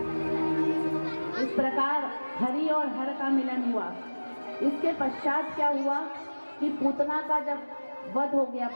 इस प्रकार हरि और हर का मिलन हुआ। इसके पश्चात क्या हुआ कि पूतना का जब वध हो गया,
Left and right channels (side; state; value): both; inverted; correlation -1.00